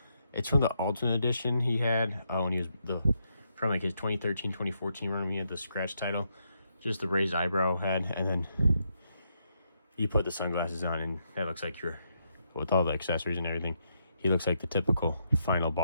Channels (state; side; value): inverted; both; correlation -0.79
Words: Ultimate Edition he had when he was from like his 2013, 2014 run when he had the scratch title. Just the raised eyebrow head, and then you put the sunglasses on, and that looks like with all the accessories and everything, he looks like the typical final